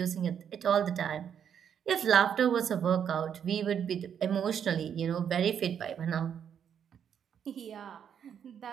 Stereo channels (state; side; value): quieter; left; 8.3 dB